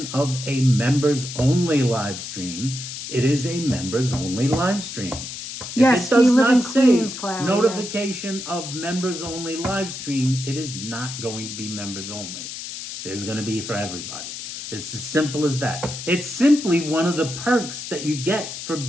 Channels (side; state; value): left; noise; hiss, 8 dB below the sound